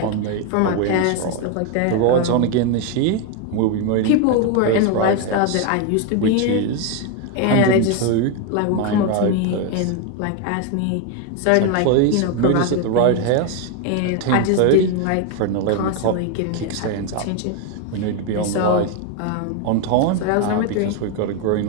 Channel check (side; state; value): both; different; correlation 0.02